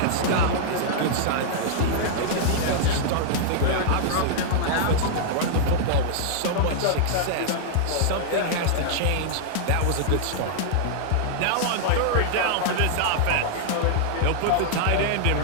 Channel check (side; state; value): both; different; correlation -0.01